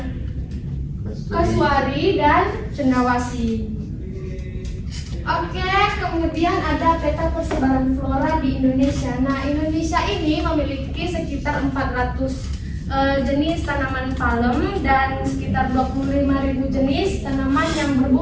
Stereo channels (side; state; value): both; identical; correlation 1.00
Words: kasuari dan cendawasih. Oke, kemudian ada peta persebaran flora di Indonesia. Nah, Indonesia ini memiliki sekitar 400 jenis tanaman palem dan sekitar 25.000 jenis tanaman yang